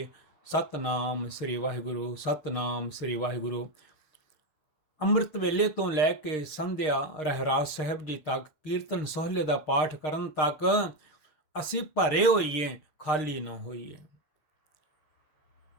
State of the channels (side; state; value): right; late; 6.5 ms